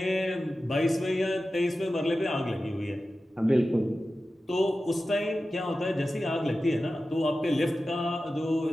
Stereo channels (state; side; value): normal; both; correlation 0.94